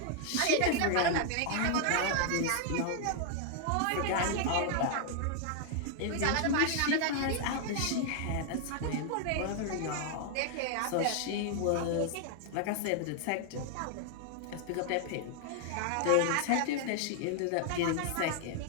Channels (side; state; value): both; different; correlation 0.00